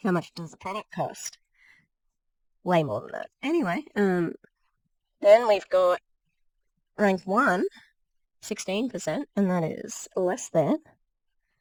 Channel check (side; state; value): both; identical; correlation 1.00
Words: much does the product cost? Way more than that. Anyway, then we've got rank 1, 16%, and that is less than.